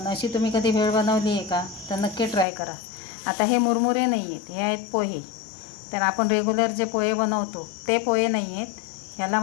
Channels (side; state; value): right; drops out; at 2.5 s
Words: अशी तुम्ही कधी भेळ बनवली आहे का? तर नक्की ट्राय करा. आता हे मुरमुरे नाही आहेत, हे आहेत पोहे. तर आपण रेग्युलर जे पोहे बनवतो ते पोहे नाही आहेत, ह्याला